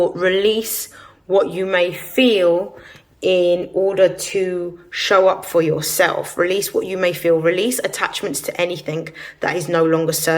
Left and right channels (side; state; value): both; identical; correlation 1.00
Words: release what you may feel in order to show up for yourself. Release what you may feel. Release attachments to anything that is no longer